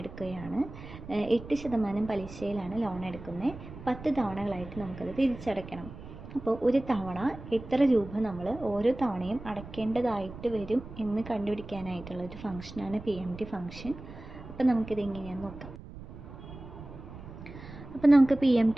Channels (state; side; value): noise; right; rumble, 14 dB below the sound